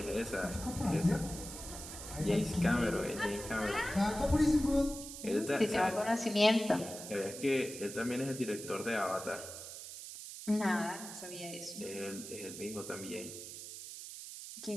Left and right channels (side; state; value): right; noise; hiss, 10 dB below the sound